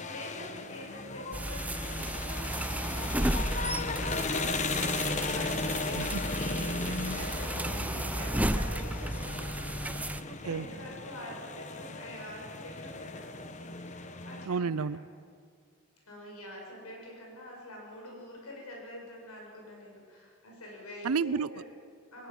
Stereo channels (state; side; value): normal; both; correlation 0.39